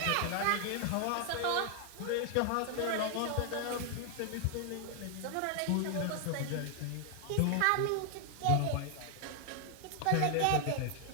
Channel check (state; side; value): different; both; correlation 0.00